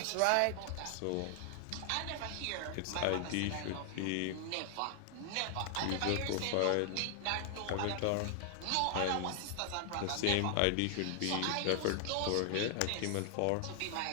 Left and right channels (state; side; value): different; both; correlation 0.00